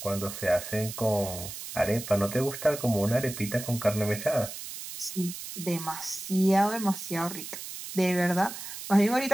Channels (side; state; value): right; noise; hiss, 10 dB below the sound